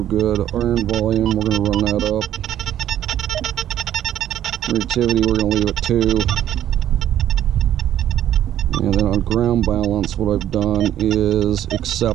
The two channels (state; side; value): quieter; left; 11.5 dB